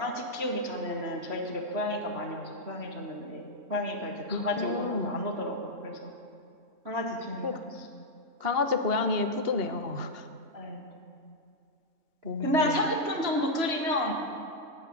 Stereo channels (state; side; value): late; left; 3.1 ms